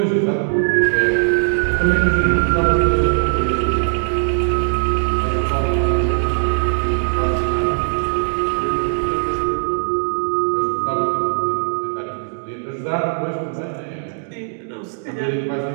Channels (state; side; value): silent; left; digital silence